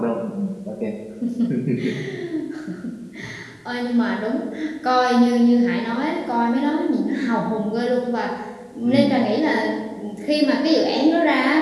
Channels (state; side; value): identical; both; correlation 1.00